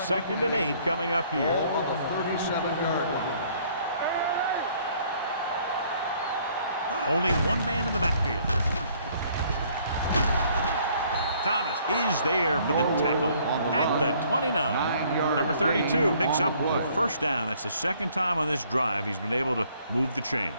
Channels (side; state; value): both; inverted; correlation -0.62